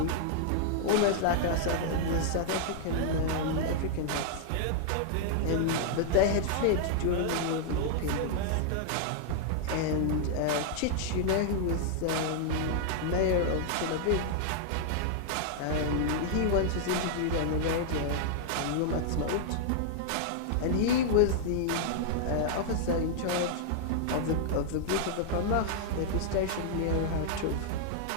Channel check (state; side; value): different; both; correlation -0.01